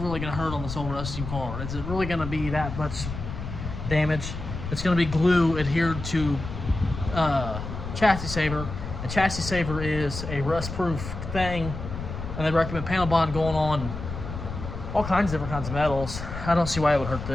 gonna hurt on this old rusty car? Is it really gonna be that much damage? It's gonna be glue adhered to chassis saver. A chassis saver is a rust-proof thing, and they recommend panel bond going on all kinds of different kinds of metals. I don't see why it would hurt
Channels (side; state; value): left; noise; rumble, 7 dB below the sound